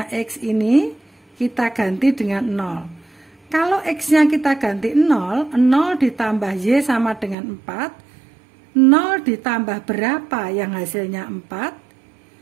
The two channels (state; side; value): drops out; left; at 7.4 s